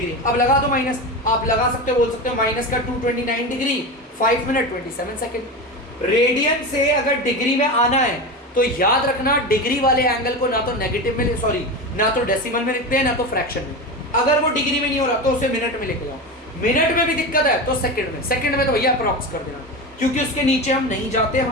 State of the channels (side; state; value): both; normal; correlation 0.23